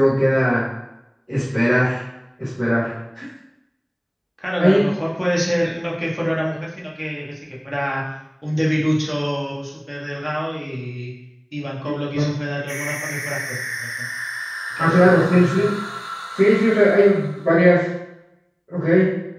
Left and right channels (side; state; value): both; identical; correlation 1.00